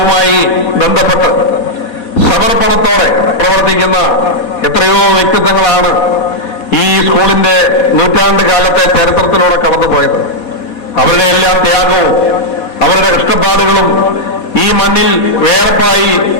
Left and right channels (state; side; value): late; right; 4.2 ms